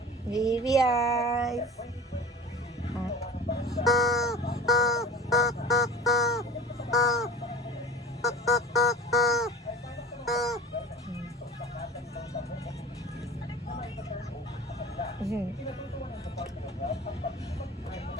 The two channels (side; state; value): both; normal; correlation 0.38